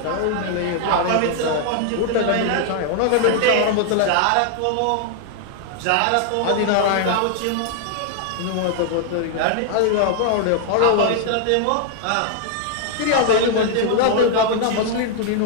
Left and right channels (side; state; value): both; different; correlation 0.00